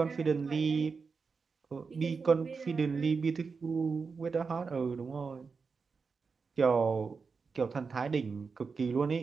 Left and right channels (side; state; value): left; quieter; 5.0 dB